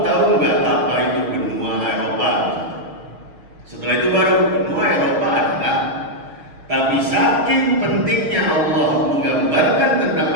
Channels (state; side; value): late; left; 6.5 ms